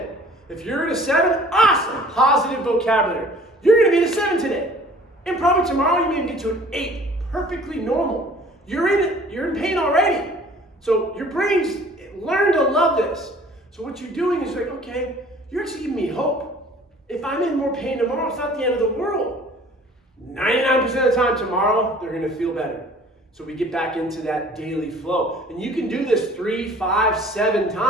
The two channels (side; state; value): both; normal; correlation 0.50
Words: If you're at a 7, awesome, positive vocabulary. You're gonna be at a 7 today. And probably tomorrow you may get to an 8, perfectly normal. You're in it, you're in pain already. So your brain's learned to love this. So what you're doing is like, okay, you're actually giving me hope. If I'm in more pain tomorrow, it's not the end of the world. 99% of the time tomorrow, they're gonna feel better. So we get back into that daily flow. And you can do this 3, 5, 7